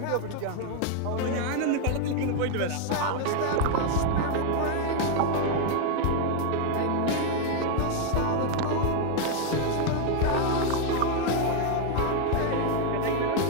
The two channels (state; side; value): different; both; correlation 0.01